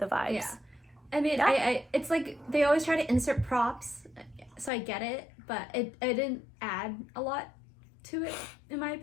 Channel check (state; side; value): drops out; right; at 4.7 s